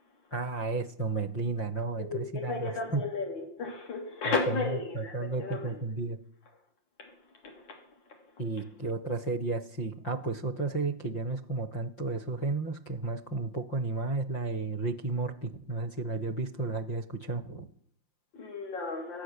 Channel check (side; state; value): right; late; 5.7 ms